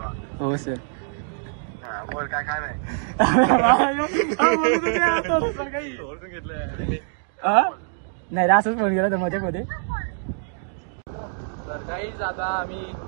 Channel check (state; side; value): silent; left; digital silence